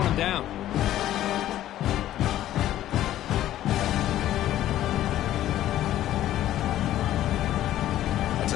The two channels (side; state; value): right; quieter; 13.1 dB